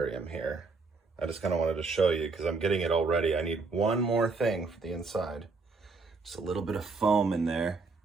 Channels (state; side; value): quieter; left; 4.1 dB